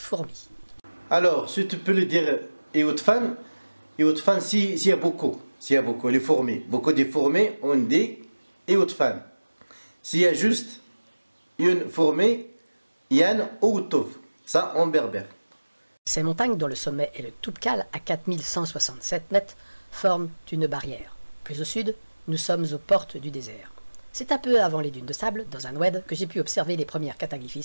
Alors, si tu peux le dire, Eoutfan, s'il y a beaucoup, les fourmis, beaucoup de fourmis, on dit Eoutfan. S'il y a juste une fourmi, Yann Outouf, ça en berbère. Ces montagnes, dont le sommet est le Toubkal à 4167 mètres, forment une barrière. Plus au sud, nous sommes aux portes du désert. C'est un peu avant les dunes de sable, dans un oued, que j'ai pu observer les premières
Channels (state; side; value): inverted; both; correlation -1.00